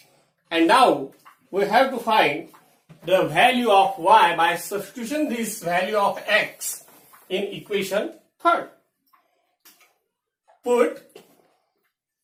And now we have to find the value of y by substitution this value of x in equation 3. Put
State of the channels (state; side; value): identical; both; correlation 1.00